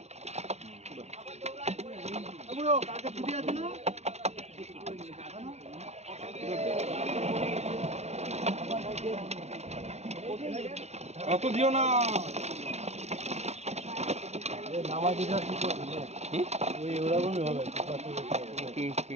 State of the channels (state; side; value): late; left; 0.32 ms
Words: বুড়ো, কালকে ছুটি আছে না? এত দিও না। নামাজিটা কি করবে? ওই ওরকমই হবে।